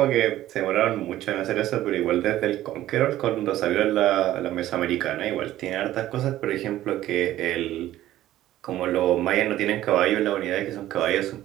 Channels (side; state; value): left; quieter; 14.0 dB